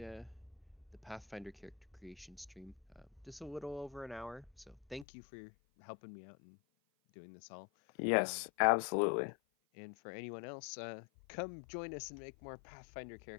Pathfinder character creation stream. Just a little over an hour. So thank you for helping me out and doing this all. Um, Yes, absolutely. and for anyone else, come join us and make more Pathfinder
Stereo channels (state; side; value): drops out; right; at 5.1 s